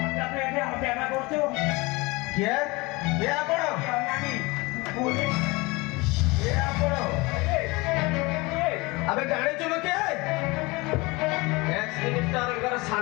अबे जाने चुनो क्या मिनिस्टर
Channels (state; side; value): quieter; right; 24.2 dB